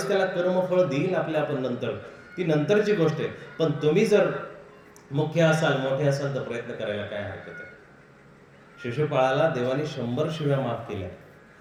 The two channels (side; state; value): both; identical; correlation 1.00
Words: त्याला कर्मफळ देईल आपल्या आपण नंतर, ती नंतरची गोष्ट आहे. पण तुम्ही जर मुख्य असाल, मोठे असाल, तर प्रयत्न करायला काय हरकत आहे. शिशुपाळाला देवाने 100 शिव्या माफ केल्या.